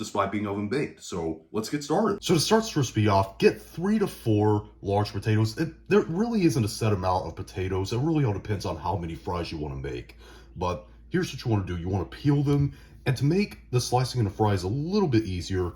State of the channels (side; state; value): both; identical; correlation 1.00